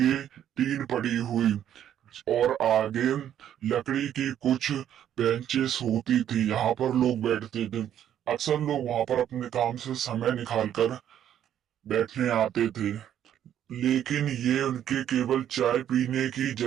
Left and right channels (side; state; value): left; quieter; 10.4 dB